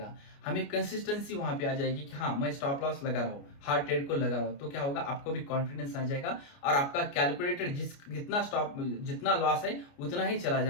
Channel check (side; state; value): right; late; 29 ms